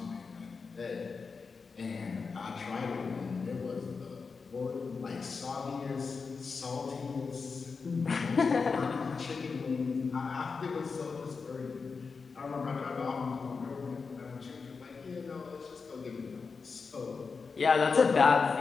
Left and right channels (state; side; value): quieter; right; 4.9 dB